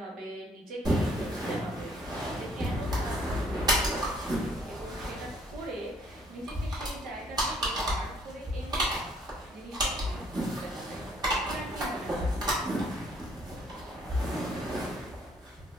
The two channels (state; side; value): normal; both; correlation 0.64